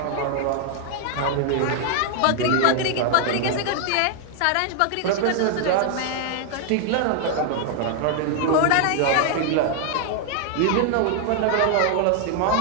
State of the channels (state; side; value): different; both; correlation 0.00